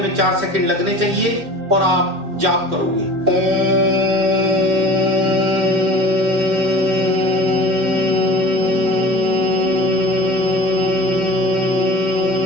4 सेकंड लगने चाहिए और आप जाप करोगे ओम।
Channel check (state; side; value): late; left; 2.8 ms